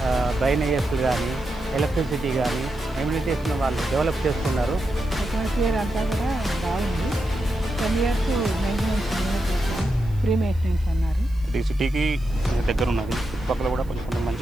డ్రైనేజెస్లు కానీ ఎలక్ట్రిసిటీ కానీ ఎమ్యూనిటీస్ను వాళ్ళు డెవలప్ చేస్తున్నారు. అట్మాస్ఫియర్ అంతా కూడా బాగుంది. 10 years మెయింటెనెన్స్ ఫ్రీ మెయింటెనెన్స్ అన్నారు. ఇది సిటీకి దగ్గర ఉన్నది. చుట్టుపక్కల కూడా కొంచెం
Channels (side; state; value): right; noise; hiss, 28 dB below the sound